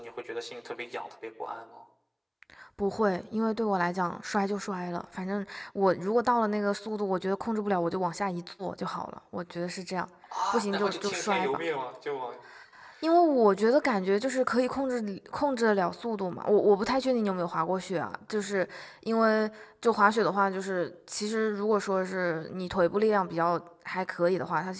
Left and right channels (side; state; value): both; identical; correlation 1.00